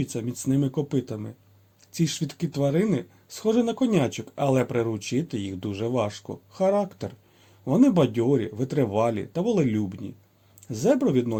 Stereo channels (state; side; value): identical; both; correlation 1.00